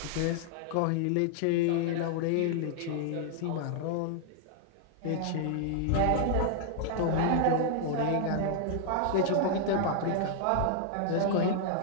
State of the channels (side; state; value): both; different; correlation -0.01